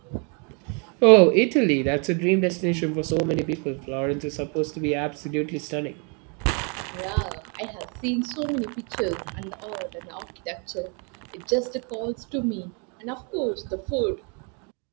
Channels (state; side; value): quieter; left; 36.1 dB